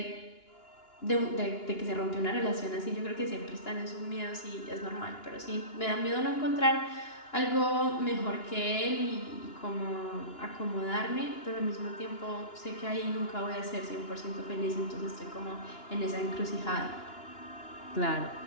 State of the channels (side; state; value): right; late; 2.9 ms